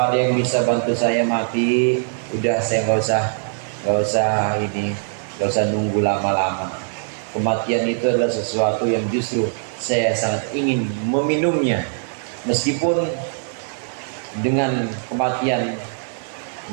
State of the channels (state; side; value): silent; left; digital silence